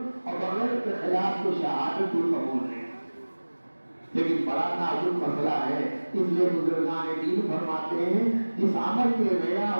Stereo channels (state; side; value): inverted; both; correlation -1.00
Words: اور بغیر اخلاص کے شہادت بھی قبول نہیں. لیکن بڑا نازک مسئلہ ہے، اس لیے بزرگان دین فرماتے ہیں جس عمل میں ریا